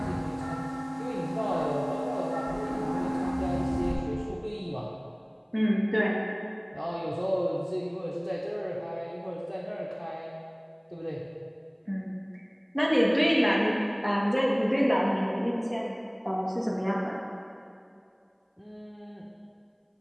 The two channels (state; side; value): identical; both; correlation 1.00